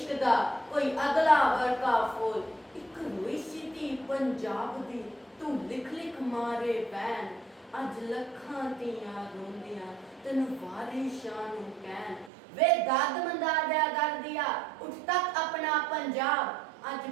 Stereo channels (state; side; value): drops out; left; at 12.3 s